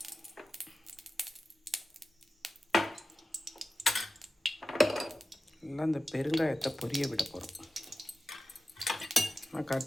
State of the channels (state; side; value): normal; both; correlation 0.93